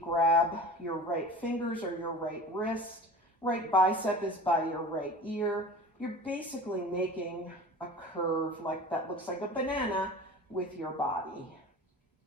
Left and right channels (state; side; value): normal; both; correlation 0.38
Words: your right fingers or your right wrist. Right bicep is by your right ear. You're basically making a curve like that looks like a banana with your body.